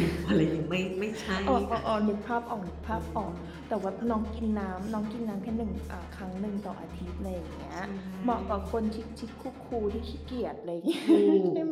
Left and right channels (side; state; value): both; identical; correlation 1.00